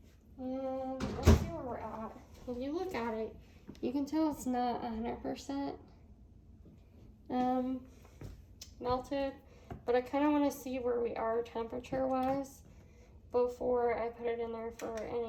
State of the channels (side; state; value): both; identical; correlation 1.00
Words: And let's see where we're at. If you look at it, you can tell it's not 100% melted, but I kind of want to see where we are temperature-wise before I put it in there for